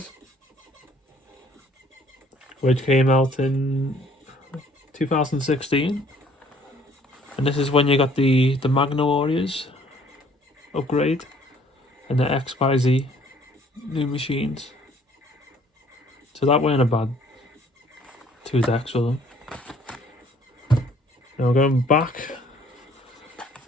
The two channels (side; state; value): both; normal; correlation 0.59